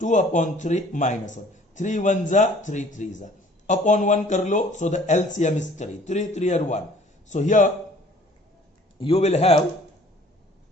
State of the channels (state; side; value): normal; both; correlation 0.54